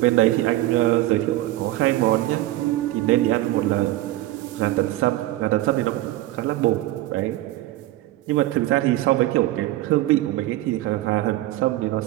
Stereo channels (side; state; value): left; quieter; 16.3 dB